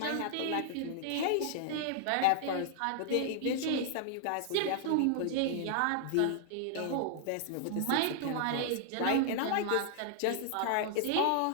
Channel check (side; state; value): both; different; correlation -0.01